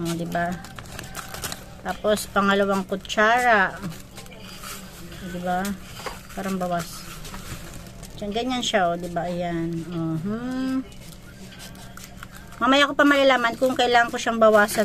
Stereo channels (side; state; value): both; identical; correlation 1.00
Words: diba? Tapos, pangalawang kutsara. O, diba? Parang bawas. Diyan, ganyan siya, o, diba? Ayan. Mamaya ko pa malalaman kung kailangan ko siyang